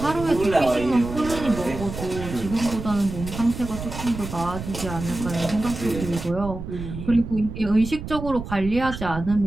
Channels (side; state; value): right; noise; rumble, 9 dB below the sound